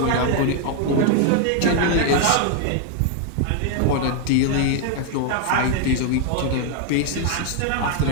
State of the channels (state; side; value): different; both; correlation 0.00